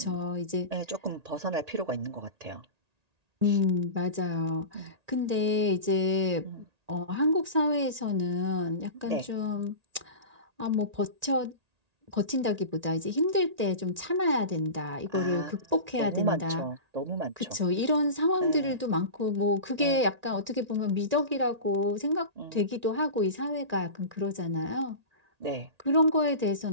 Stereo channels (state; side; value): late; left; 1.8 ms